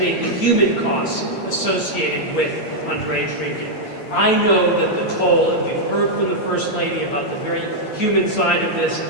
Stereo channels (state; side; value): late; right; 8.8 ms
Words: the human costs associated with underage drinking. I know that the toll, and we've heard from the First Lady about the very human side of this,